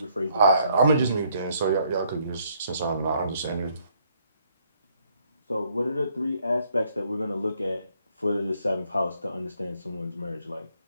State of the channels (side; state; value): both; inverted; correlation -0.69